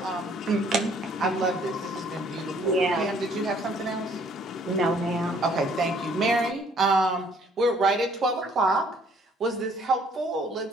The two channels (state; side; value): normal; both; correlation 0.61